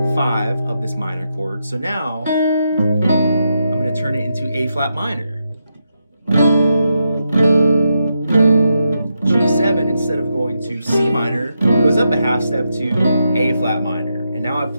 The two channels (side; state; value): both; inverted; correlation -0.84